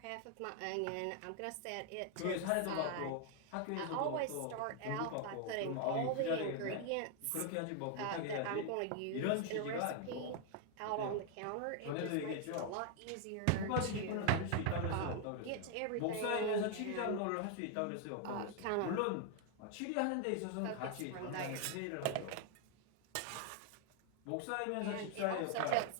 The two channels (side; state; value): both; different; correlation 0.00